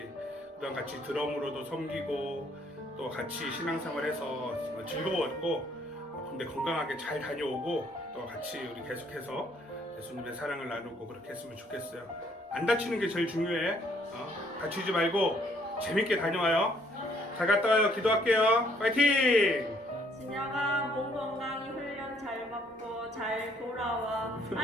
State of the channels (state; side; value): normal; both; correlation 0.65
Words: 그동안 같이 드럼으로도 섬기고 또 같이 신앙생활해서 정말 즐거웠고 군대 건강하게 잘 다녀오고 또 같이 우리 계속해서 예수님의 사랑을 나누고 그렇게 했으면 좋겠어요. 안 다치는 게 제일 중요해. 다치지 말고 재밌게 다녀와요. 잘 갔다 와요. 기도할게요. 파이팅! 진영아, 몸 건강히 훈련 잘 받고 잘 돌아와.